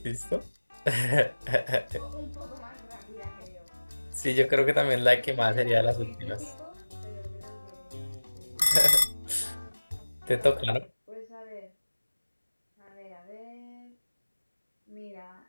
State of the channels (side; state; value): both; inverted; correlation -1.00